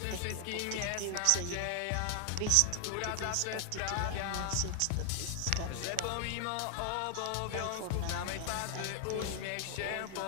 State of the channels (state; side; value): different; both; correlation 0.00